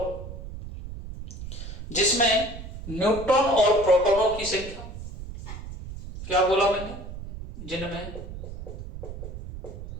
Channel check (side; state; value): right; noise; rumble, 11 dB below the sound